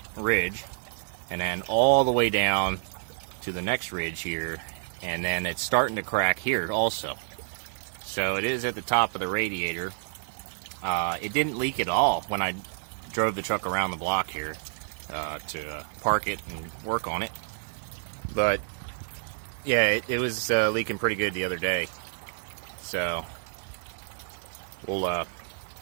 ridge and then all the way down to the next ridge here, and then it's starting to crack here also. So it is at the top of the radiator. It didn't leak at all when I drove the truck around the block here to park it and work on it, but yeah, it was leaking pretty good the other day. So we'll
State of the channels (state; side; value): silent; left; digital silence